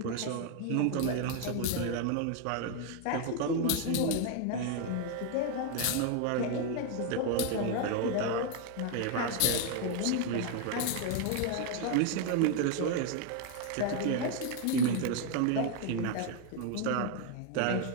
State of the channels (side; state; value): both; different; correlation 0.01